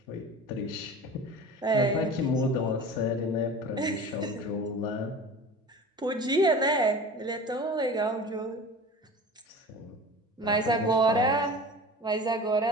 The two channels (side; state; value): both; normal; correlation 0.37